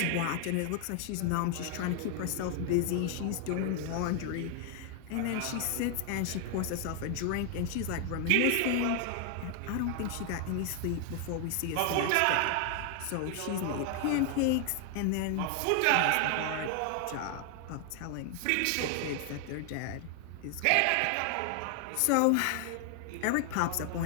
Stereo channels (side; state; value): both; different; correlation 0.00